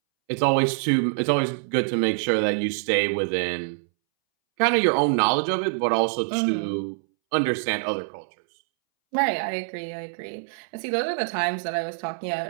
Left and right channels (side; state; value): left; silent; 62 dB below the other